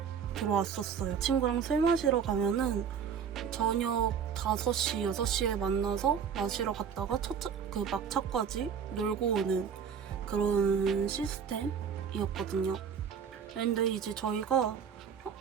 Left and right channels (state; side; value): quieter; left; 7.2 dB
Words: 들어왔었어요. 친구랑 술 마시러 가면은 저녁 5시, 6시에 만나서 마시러 갔다가 그 막차까지 놀고 오는 그런 시스템이었거든요. 근데 이제 저희가